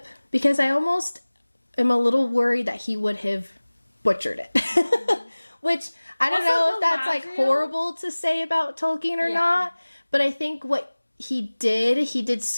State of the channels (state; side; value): inverted; both; correlation -1.00